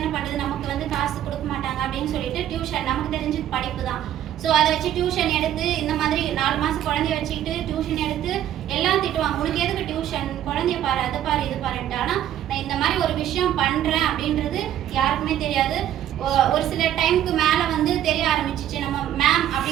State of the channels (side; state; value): left; quieter; 11.4 dB